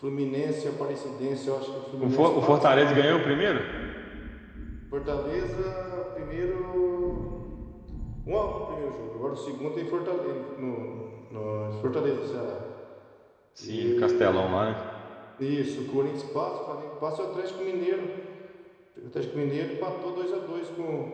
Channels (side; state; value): both; identical; correlation 1.00